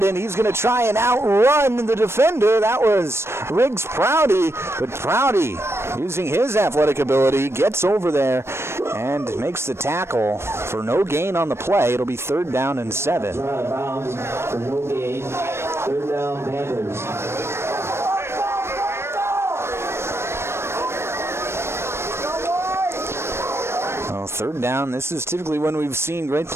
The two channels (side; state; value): left; late; 0.12 ms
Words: and he's going to try and outrun the defender. That was Riggs Prouty, but Prouty, using his athletic ability, gets over there and makes the tackle for no gain on the play. It'll be 3rd down and 7. Out of bounds for no gain. 3rd down Panthers. Well, 3rd down, this is typically when we've seen Great